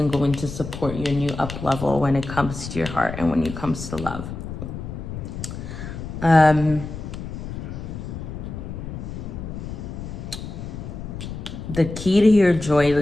going to support your new up level when it comes to your heart and when it comes to love. The key to your joy,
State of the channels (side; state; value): left; noise; rumble, 8 dB below the sound